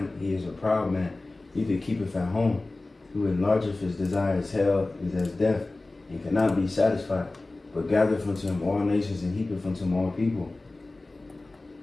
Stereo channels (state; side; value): quieter; right; 3.0 dB